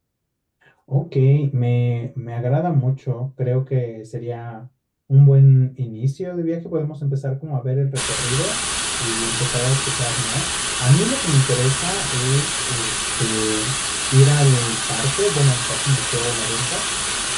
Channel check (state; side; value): identical; both; correlation 1.00